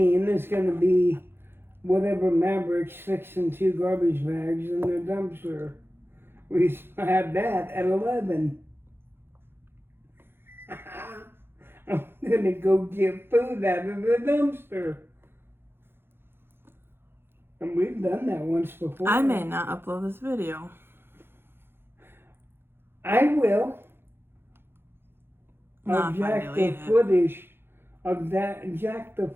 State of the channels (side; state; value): left; late; 0.11 ms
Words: is going to be whatever Maverick sticks in 2 garbage bags in their dumpster. We had that at 11. I'm going to go get food out of the dumpster. And we've done that once before. I may not upload this video. I will. Not I'll if I jack delete the it. footage. Jack the